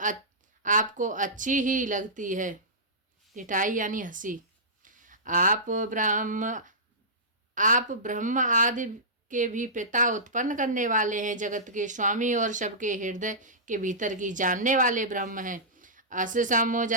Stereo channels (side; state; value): both; normal; correlation -0.17